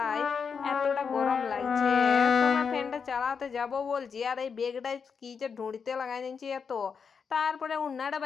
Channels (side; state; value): right; quieter; 6.1 dB